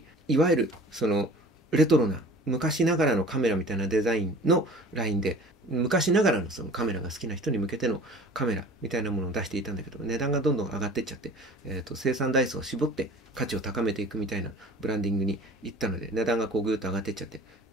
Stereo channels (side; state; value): both; normal; correlation 0.44